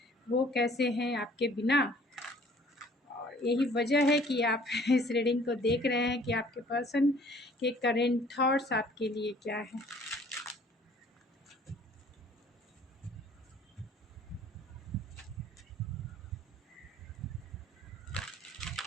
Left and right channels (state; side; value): normal; both; correlation 0.55